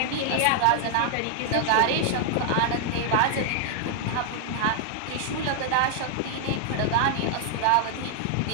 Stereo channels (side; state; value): both; different; correlation 0.00